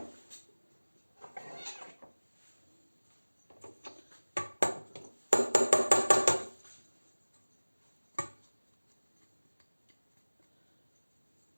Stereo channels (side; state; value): both; inverted; correlation -1.00